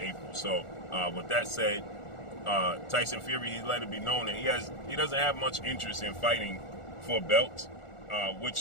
April. So, with that said, Tyson Fury, he let it be known that he doesn't have much interest in fighting for belts,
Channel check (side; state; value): right; late; 1.4 ms